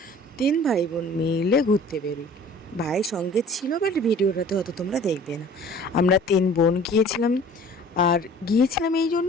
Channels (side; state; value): both; normal; correlation 0.48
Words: 3 ভাই বোন মিলে ঘুরতে বেরোই। ভাই সঙ্গে ছিল, বাট ভিডিওটাতে হয়তো তোমরা দেখবে না। আমরা 3 বোন গিয়েছিলাম, আর গিয়েছিলাম এই জন্য